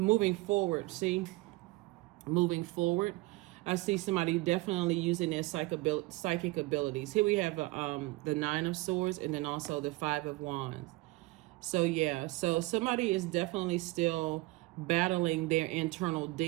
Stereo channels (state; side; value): quieter; left; 21.5 dB